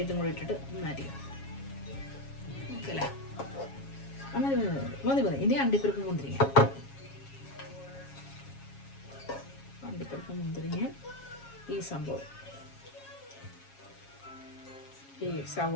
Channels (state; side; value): late; right; 7.3 ms